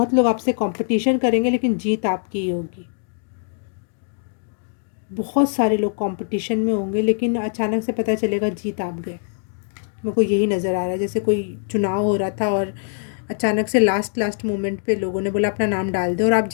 लोग आपसे कंपटीशन करेंगे लेकिन जीत आपकी ही होगी। बहुत सारे लोग कंपटीशन में होंगे लेकिन अचानक से पता चलेगा जीत आप गए। मेरे को यही नज़र आ रहा है, जैसे कोई चुनाव हो रहा था और अचानक से लास्ट मोमेंट पे लोगों ने बोला अपना नाम डाल दे और आप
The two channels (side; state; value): right; silent; 64 dB below the other